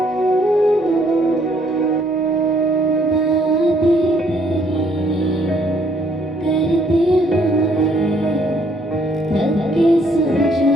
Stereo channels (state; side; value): normal; both; correlation 0.66